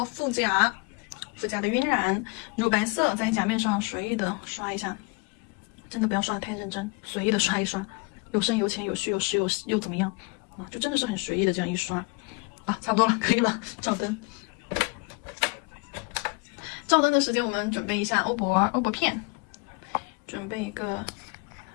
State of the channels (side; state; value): right; quieter; 30.4 dB